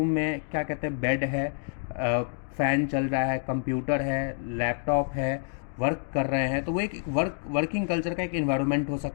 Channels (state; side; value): silent; right; digital silence